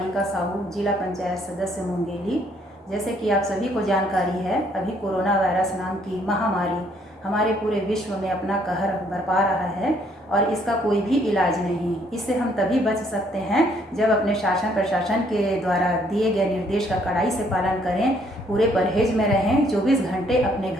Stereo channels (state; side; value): normal; both; correlation 0.66